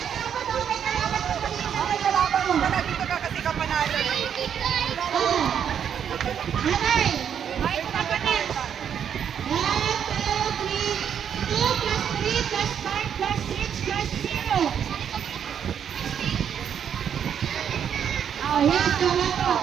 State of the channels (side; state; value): left; quieter; 8.4 dB